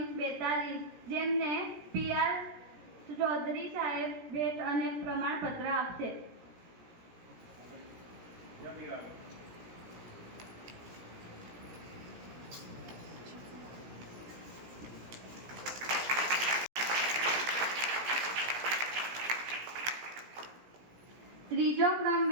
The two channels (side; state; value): left; late; 17 ms